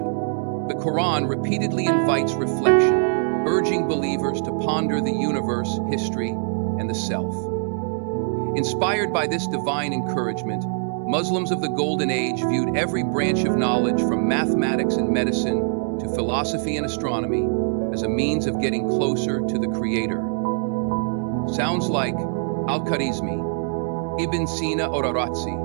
The Quran repeatedly invites reflection, urging believers to ponder the universe, history, and the self. Inspired by this divine encouragement, Muslims of the Golden Age viewed every branch of knowledge from mathematics and medicine to philosophy and astronomy as a means of getting closer to the Creator. Sounds like Al-Khwarizmi, Ibn Sina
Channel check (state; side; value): silent; left; 63 dB below the other